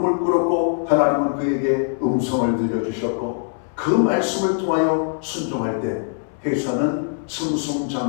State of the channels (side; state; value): right; silent; 64 dB below the other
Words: 꿇었고 하나님은 그에게 음성을 들려주셨고 그 말씀을 통하여 순종할 때 회사는